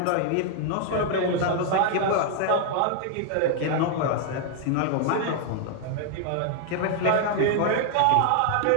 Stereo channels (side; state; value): both; different; correlation 0.00